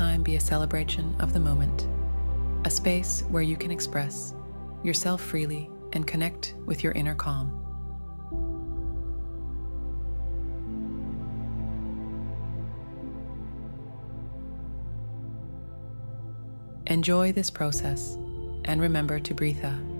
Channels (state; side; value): inverted; both; correlation -1.00